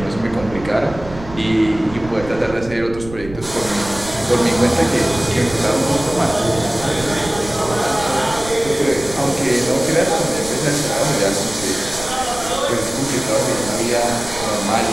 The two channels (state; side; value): noise; right; rumble, 14 dB below the sound